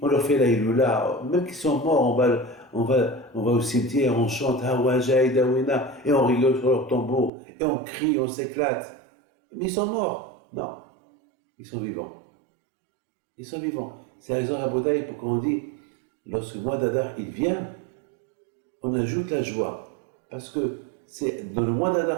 leur fait la Iloula, même qu'ils sont morts, on va au cimetière, on chante Hawaja et Dawina, et on rigole sur leur tombeau, et on crie, on s'éclate. Mais ils sont morts. Non, ils sont vivants. Ils sont vivants. C'est la raison à Bodaï pour qu'on dit, lorsque le mois d'Adar il vient, on ajoute la joie. Parce que c'est dans le mois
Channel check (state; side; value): drops out; left; at 7.3 s